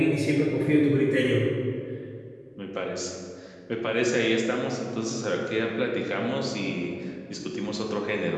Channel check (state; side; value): identical; both; correlation 1.00